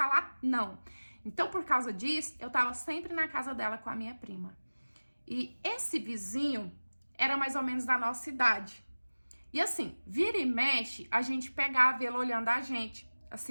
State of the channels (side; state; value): both; inverted; correlation -1.00